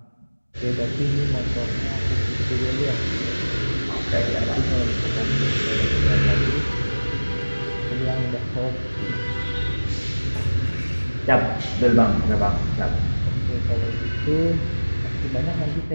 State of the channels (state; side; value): inverted; both; correlation -1.00